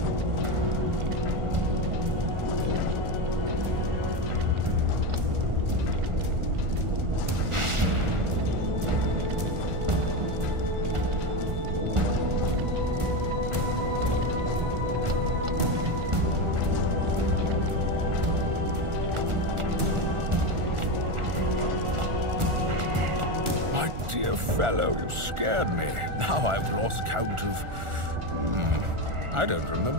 Dear fellow, you scared me. Now I've lost count of... I don't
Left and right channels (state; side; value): late; left; 1.4 ms